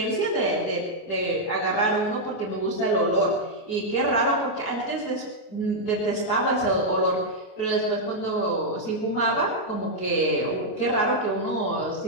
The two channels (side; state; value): right; late; 29 ms